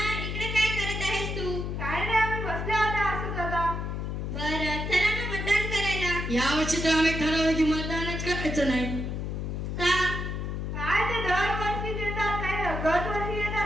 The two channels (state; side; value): noise; left; hum, 3 dB below the sound